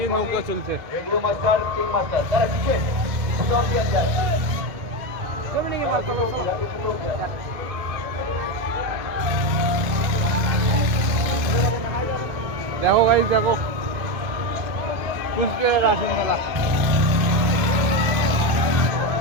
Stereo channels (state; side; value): late; left; 2.4 ms